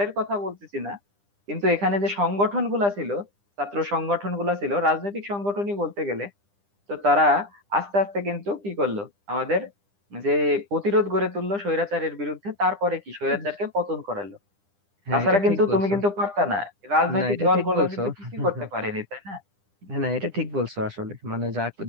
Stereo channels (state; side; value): late; left; 9.9 ms